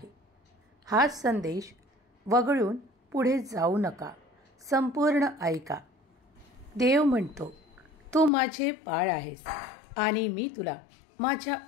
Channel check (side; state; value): right; drops out; at 8.3 s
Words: हा संदेश वगळून पुढे जाऊ नका, संपूर्ण ऐका. देव म्हणतो, तू माझे बाळ आहेस आणि मी तुला माझ्या